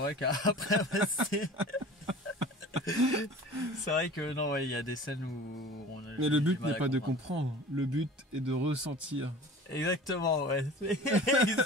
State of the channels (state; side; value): normal; both; correlation 0.41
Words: qu'après, c'est vrai que non, il y a des scènes où on a. Mais le but n'est pas de comprendre, le but est de ressentir. Exactement, ouais.